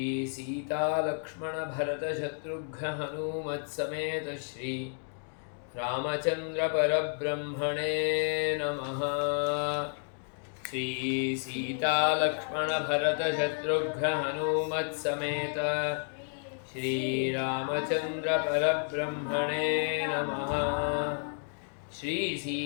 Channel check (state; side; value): silent; right; digital silence